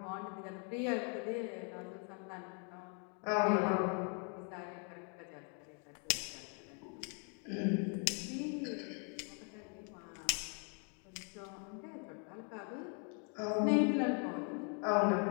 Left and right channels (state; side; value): quieter; right; 39.5 dB